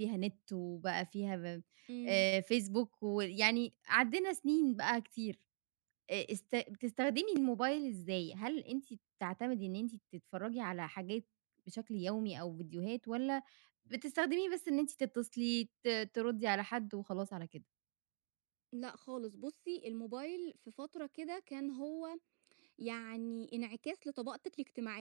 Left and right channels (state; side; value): silent; left; digital silence